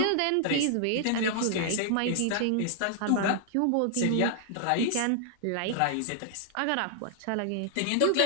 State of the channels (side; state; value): both; different; correlation -0.01